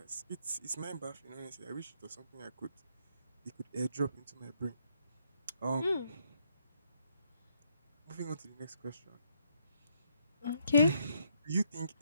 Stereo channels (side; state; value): both; inverted; correlation -0.73